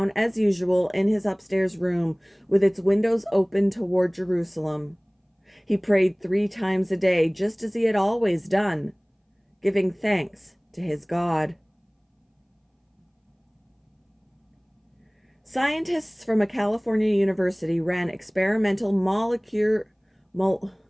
as usual in his upstairs room with its windows open toward Jerusalem. He prayed 3 times a day, just as he had always done, giving thanks to his God. Scientists from a California university ran experimental molecular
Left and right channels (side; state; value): both; identical; correlation 1.00